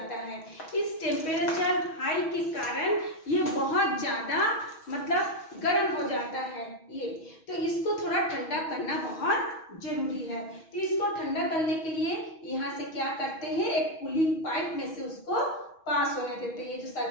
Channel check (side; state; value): right; late; 6.2 ms